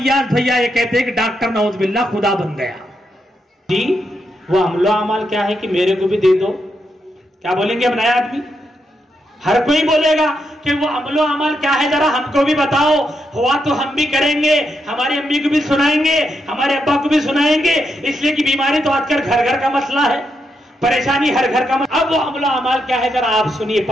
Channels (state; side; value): normal; both; correlation 0.82